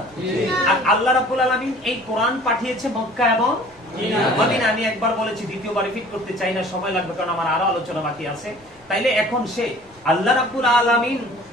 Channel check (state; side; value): normal; both; correlation 0.49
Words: আর আল্লাহ রাব্বুল আলামিন এই কোরআন পাঠিয়েছে মক্কা এবং মদিনা। আমি একবার বলেছি, দ্বিতীয়বার রিপিট করতে চাই না, সময় লাগবে, কারণ আমার আরো আলোচনা বাকি আছে। তাইলে এখন সে আল্লাহ রাব্বুল